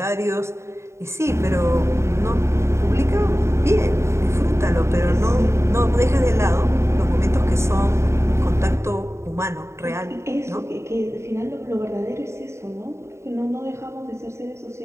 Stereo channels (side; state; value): left; late; 0.13 ms